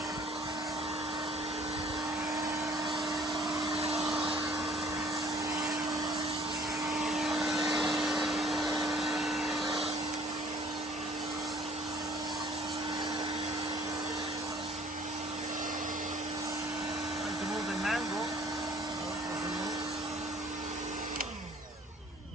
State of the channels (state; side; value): normal; both; correlation 0.54